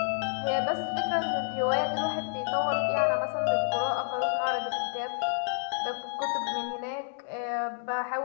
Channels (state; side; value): silent; right; digital silence